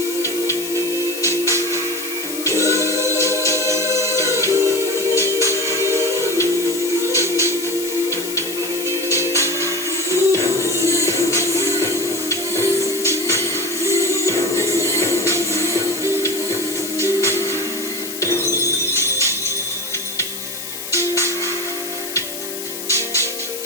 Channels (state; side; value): noise; left; hiss, 8 dB below the sound